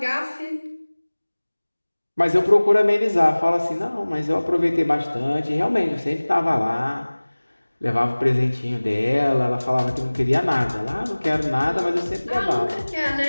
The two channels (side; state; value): both; inverted; correlation -1.00